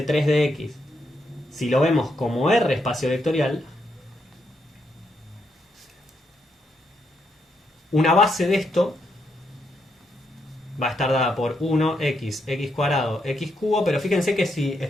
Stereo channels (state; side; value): normal; both; correlation 0.79